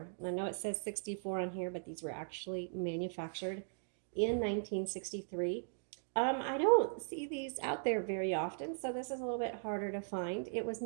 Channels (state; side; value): silent; left; digital silence